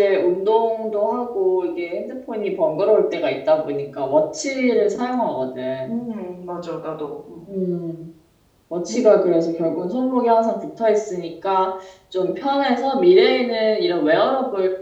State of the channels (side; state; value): both; identical; correlation 1.00